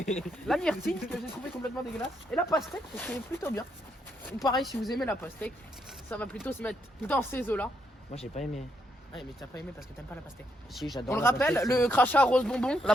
La myrtille, que j'ai trouvé complètement dégueulasse. Et la pastèque, qui est plutôt bien. Donc pareil, si vous aimez la pastèque, ça va plutôt se mettre dans ces eaux-là. Moi, j'ai pas aimé. Ouais, mais t'as pas aimé parce que t'aimes pas la pastèque. Si, j'adore. On le la rappelle, pastèque, le crachat rose bonbon, c'est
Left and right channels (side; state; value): both; normal; correlation 0.77